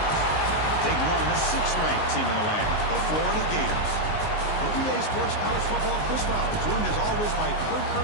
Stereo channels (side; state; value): right; late; 19 ms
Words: taking on the 6th-ranked team in the land, the Florida Gators. For EA Sports College Football, Chris Fowler, joined as always by Kurt